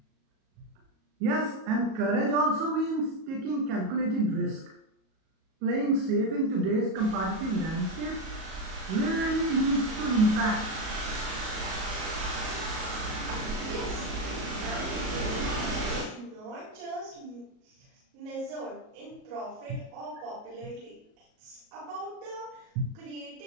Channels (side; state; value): left; late; 37 ms